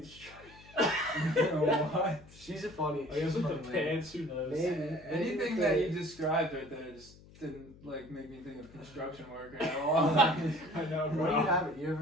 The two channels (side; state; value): left; noise; hum, 22 dB below the sound